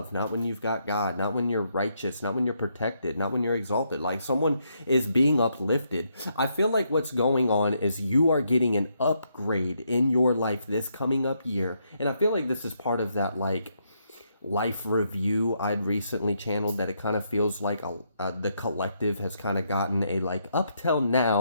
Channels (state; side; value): inverted; both; correlation -0.77